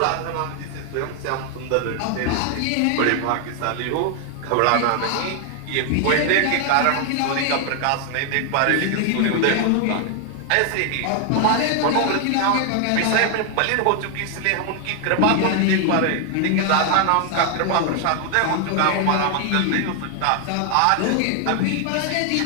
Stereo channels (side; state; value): both; different; correlation 0.00